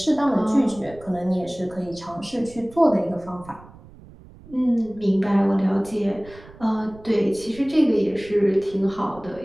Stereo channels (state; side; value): noise; right; rumble, 21 dB below the sound